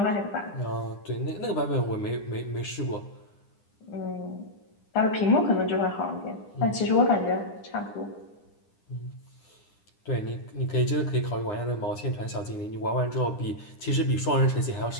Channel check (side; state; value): right; late; 9.9 ms